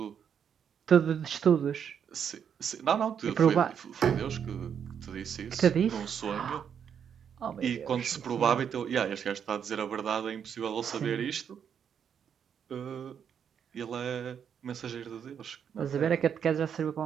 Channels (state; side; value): quieter; left; 7.9 dB